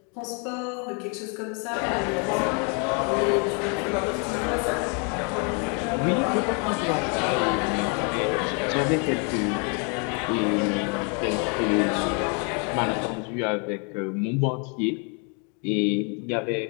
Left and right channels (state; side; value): quieter; right; 36.4 dB